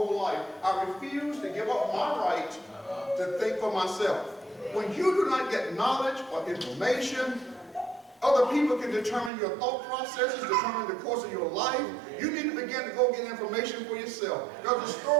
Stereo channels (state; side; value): drops out; left; at 9.3 s